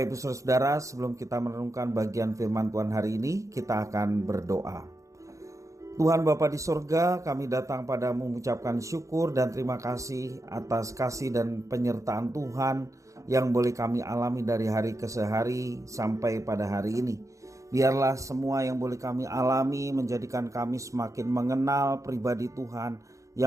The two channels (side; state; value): left; late; 0.15 ms